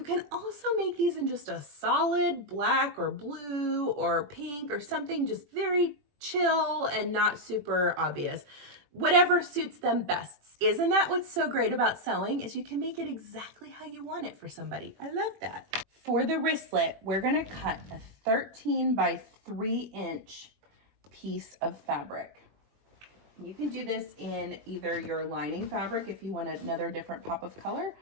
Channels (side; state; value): left; late; 21 ms